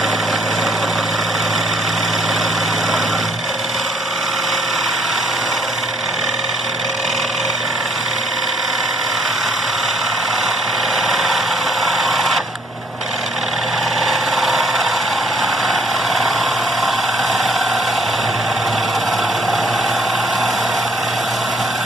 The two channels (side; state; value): both; normal; correlation 0.65